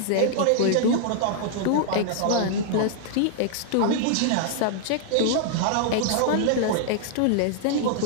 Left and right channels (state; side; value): different; both; correlation -0.01